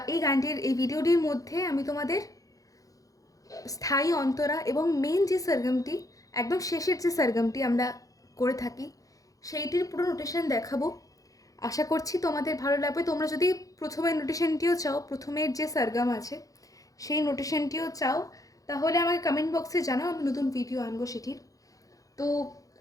এই গানটির এই ভিডিওটির মধ্যে আমি তোমাদের স্থায়ী অন্তরা এবং মেন যে সরগমটি, একদম শেষের যে সরগমটি আমরা করে থাকি, সেইটির পুরো নোটেশন দেখাবো। আশা করছি তোমাদের ভালো লাগবে। তোমরা যদি প্রথমের নোটেশনটিও চাও, প্রথমের যে সরগম আছে সেই নোটেশনটিও চাও, তাহলে আমাকে কমেন্ট বক্সে জানাও, আমি নতুন ভিডিও আনবো সেটির। তো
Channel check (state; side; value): late; right; 0.17 ms